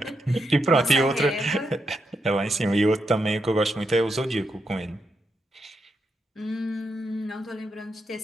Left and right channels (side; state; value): both; normal; correlation 0.82